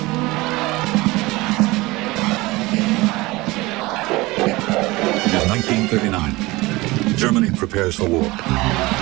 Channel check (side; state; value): left; quieter; 21.3 dB